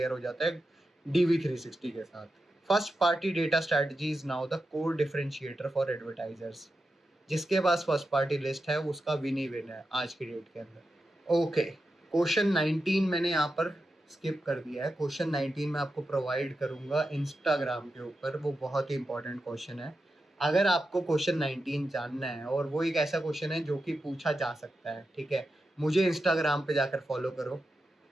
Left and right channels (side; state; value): both; normal; correlation 0.90